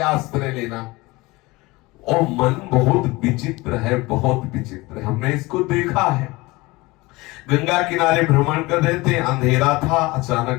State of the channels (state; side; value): quieter; right; 22.1 dB